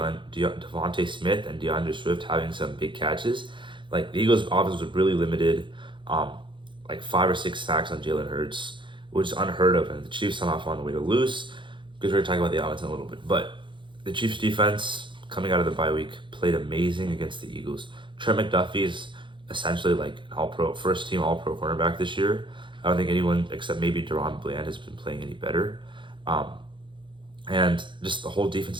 Smith and DeAndre Swift having some big catches, like the Eagles' offense was really limited. Like 5 or 6 sacks on Jalen Hurts, which is unheard of, and the Chiefs somehow found a way to lose. Because we're going to talk about the offense in a little bit, but the Chiefs defense coming out of the bye week played amazing against the Eagles. Trent McDuffie is essentially like an all-pro, first-team all-pro cornerback this year. I don't think anyone except maybe Deron Bland has been playing any better. Um, and just the whole defense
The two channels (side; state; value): left; late; 0.23 ms